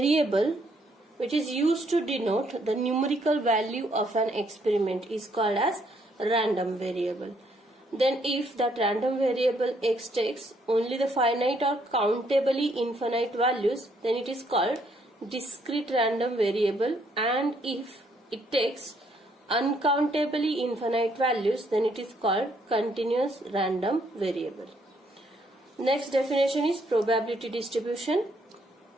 which is used to denote the numerical value of an experiment is called as random variable. Then if that random variable x takes only the finite or countably infinite values, then it is called discrete random variable, and if it takes uncountably infinite values, then it is called continuous random variable. Next definition is probability distribution.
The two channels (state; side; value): normal; both; correlation 0.70